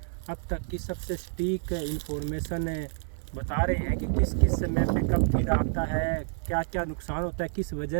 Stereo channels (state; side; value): silent; left; digital silence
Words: अब तक की सबसे सटीक इंफॉर्मेशन बता रहे हैं कि किस किस समय पे कब कीड़ा आता है, क्या क्या नुकसान होता है, किस वजह